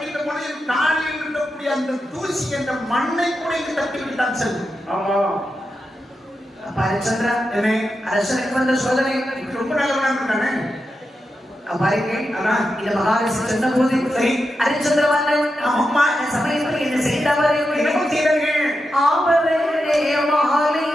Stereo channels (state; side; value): normal; both; correlation 0.88